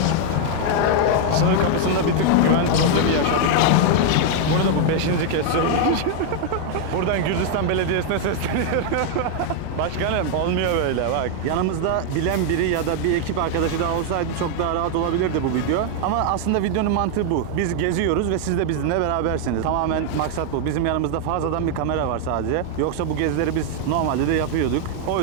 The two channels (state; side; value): different; both; correlation 0.00